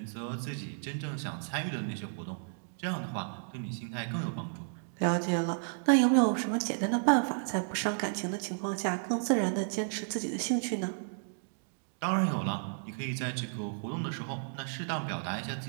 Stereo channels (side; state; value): left; silent; digital silence